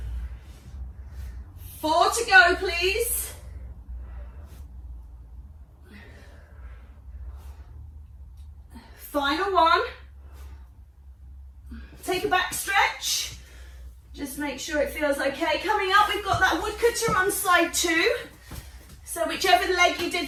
Four to go, please. Final one. Take a back stretch. Just make sure it feels okay. Coming up, we've got that woodcutter on side 2. So whichever leg you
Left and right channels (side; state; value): both; identical; correlation 1.00